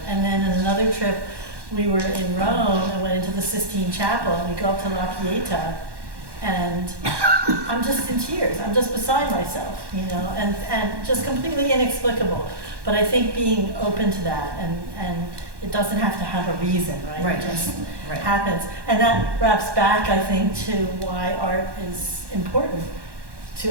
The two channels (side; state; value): left; late; 1.1 ms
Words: And then in another trip, we were in Rome and went into the Sistine Chapel, and we go up to La Pieta, and I'm just in tears. I'm just beside myself, you know, and just completely inexplicable. But I think being open to that, and it doesn't have to have a reason, right? Right. It just happens. And that wraps back, I think, to why art is important